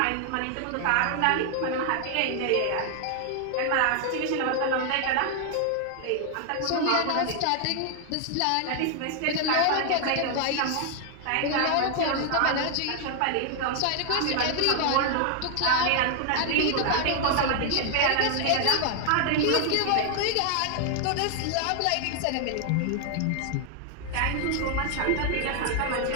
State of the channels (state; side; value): different; both; correlation 0.00